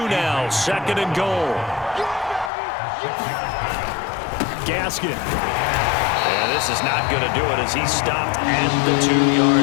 now, second and goal. Gaskin. And this is not going to do it as he's stopped at the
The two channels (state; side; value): drops out; right; at 2.5 s